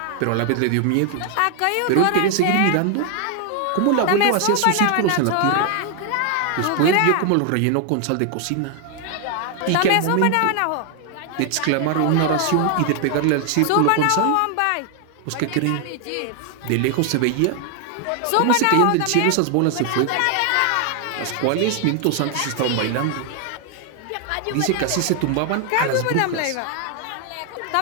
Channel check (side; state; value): both; different; correlation 0.00